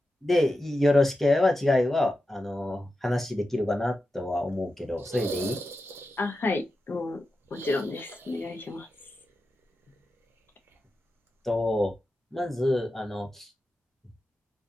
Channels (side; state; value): both; normal; correlation 0.91